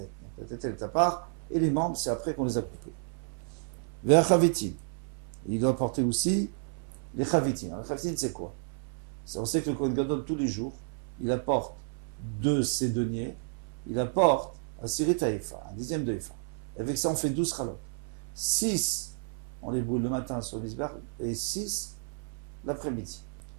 Donc la tête elle est à part, et les membres c'est après qu'on les a coupés. Vers chavitin, il doit porter aussi les chavitin. Alors, les chavitin c'est quoi? On sait que le Kohen Gadol tous les jours, il apporte de ses deniers, il apporte un sirit haïfa, un dixième de Efa. Avec ça, on fait 12 chalot. 6, on les brûle le matin sur le misbar, et 6 l'après-midi.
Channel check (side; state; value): left; silent; 57 dB below the other